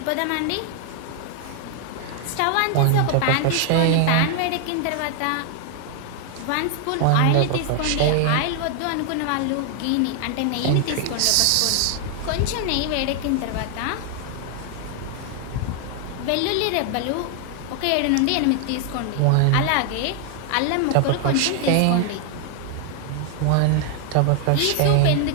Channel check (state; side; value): different; both; correlation 0.00